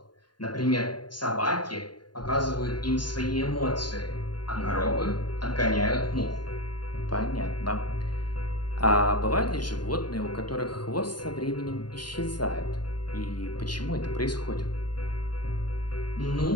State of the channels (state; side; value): late; right; 0.71 ms